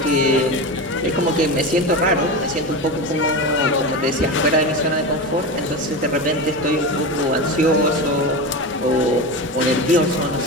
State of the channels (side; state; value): both; normal; correlation 0.22